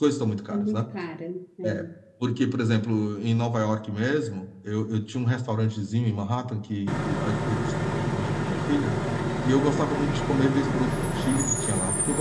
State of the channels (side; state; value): both; identical; correlation 1.00